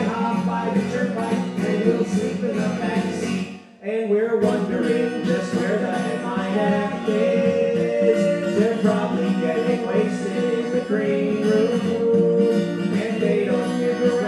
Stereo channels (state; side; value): identical; both; correlation 1.00